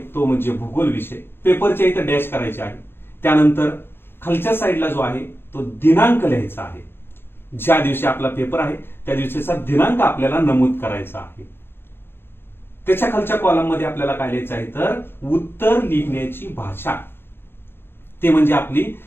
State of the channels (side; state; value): right; late; 0.10 ms